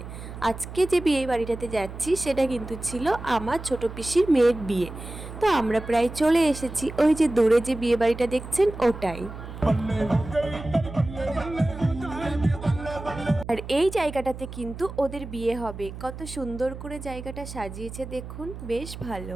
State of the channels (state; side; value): noise; right; hum, 11 dB below the sound